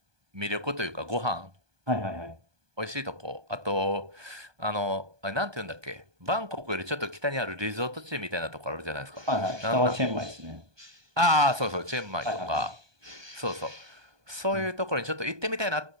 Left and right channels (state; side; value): late; left; 1.2 ms